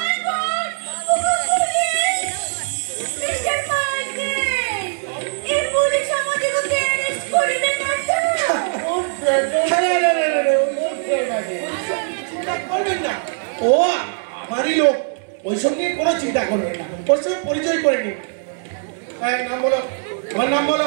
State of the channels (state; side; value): silent; left; digital silence